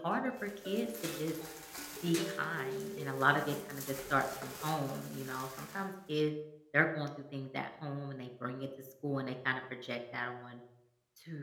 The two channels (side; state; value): both; identical; correlation 1.00